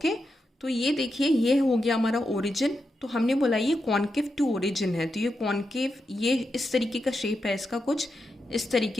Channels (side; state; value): both; normal; correlation 0.86